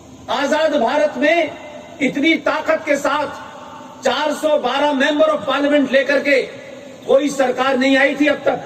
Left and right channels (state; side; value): identical; both; correlation 1.00